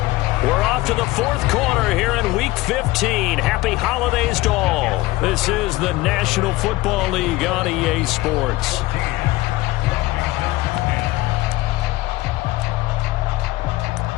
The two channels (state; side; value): quieter; right; 18.5 dB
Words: We're off to the 4th quarter here in Week 15. Happy holidays to all. This is the National Football League on EA Sports.